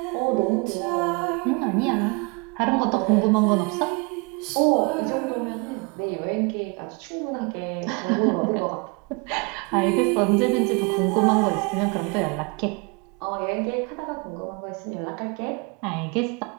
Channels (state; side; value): quieter; left; 31.1 dB